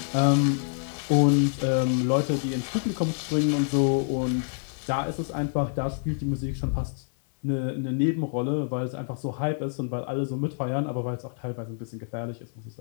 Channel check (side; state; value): right; silent; 60 dB below the other